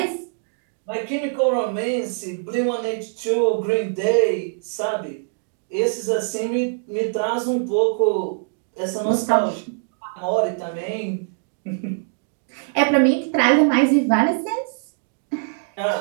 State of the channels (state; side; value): silent; left; digital silence